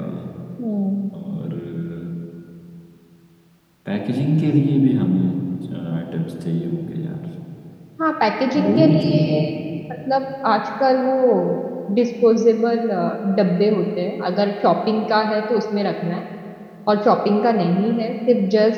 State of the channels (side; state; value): both; identical; correlation 1.00